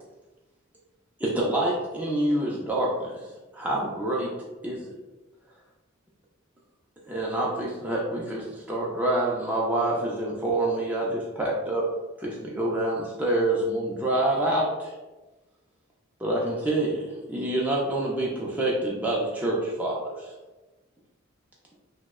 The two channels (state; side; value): normal; both; correlation 0.22